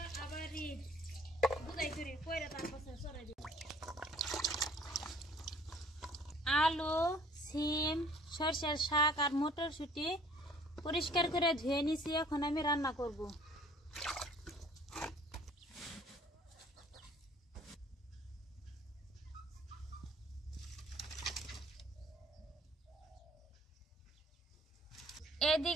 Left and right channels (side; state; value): both; normal; correlation 0.55